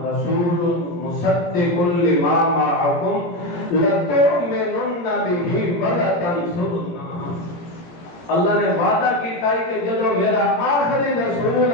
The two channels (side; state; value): right; late; 17 ms